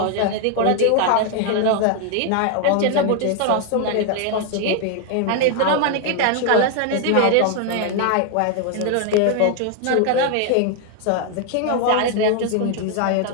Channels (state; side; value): different; both; correlation 0.00